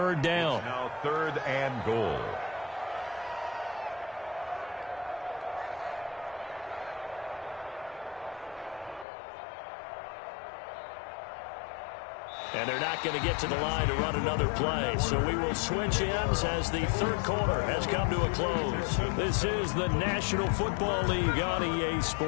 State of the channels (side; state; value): right; drops out; at 9.1 s